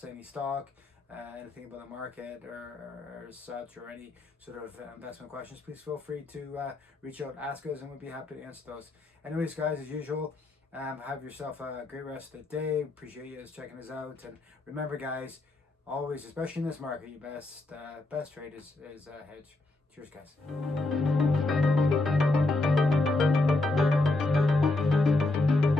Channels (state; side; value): quieter; right; 3.1 dB